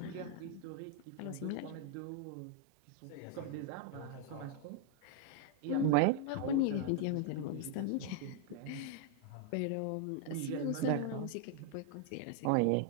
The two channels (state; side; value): different; both; correlation 0.00